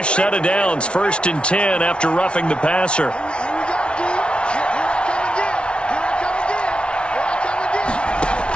set of downs, 1st and 10 after roughing the passer.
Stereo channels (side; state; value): right; late; 0.058 ms